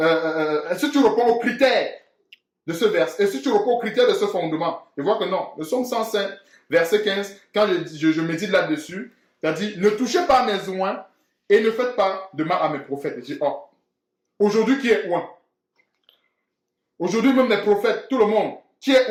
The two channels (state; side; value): identical; both; correlation 1.00